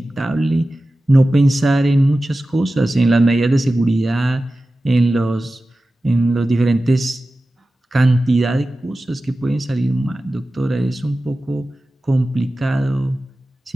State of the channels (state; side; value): normal; both; correlation 0.95